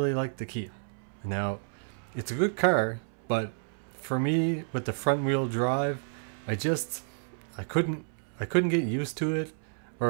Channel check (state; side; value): silent; left; 58 dB below the other